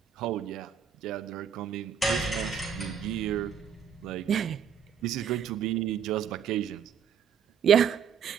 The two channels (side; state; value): left; quieter; 7.8 dB